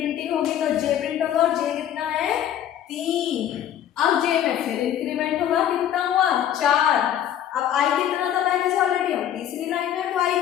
होगी तो जे प्रिंट होगा, और जे कितना है 3। अब जे में फिर इंक्रीमेंट होगा, कितना हुआ 4। अब आई कितना था पहले से ऑलरेडी, हम तीसरी लाइन में, तो आई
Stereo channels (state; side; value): quieter; right; 10.6 dB